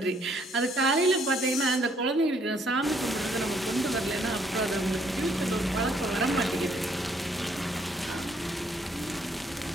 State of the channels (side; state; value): both; normal; correlation 0.67